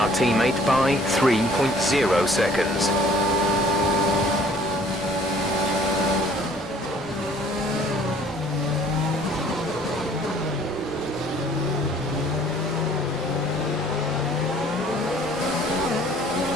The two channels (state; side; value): normal; both; correlation 0.55